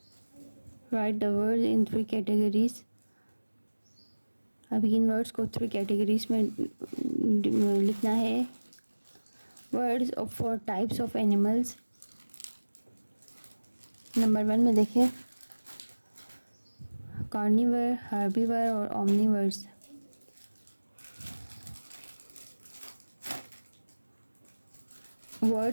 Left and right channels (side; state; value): both; inverted; correlation -1.00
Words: right the word in 3 कैटेगरीज। अब इन वर्ड्स को 3 कैटेगरीज में लिखना है। Words for types of animals. Number 1 में देखें कार्निवर, हार्बीवर और Omniverse.